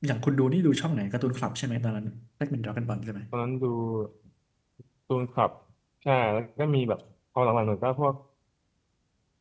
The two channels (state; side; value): identical; both; correlation 1.00